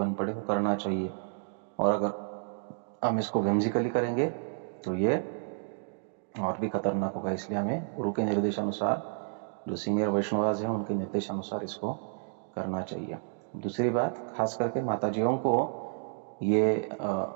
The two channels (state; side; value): silent; left; digital silence